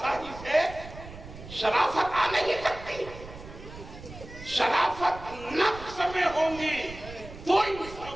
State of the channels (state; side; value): noise; right; rumble, 14 dB below the sound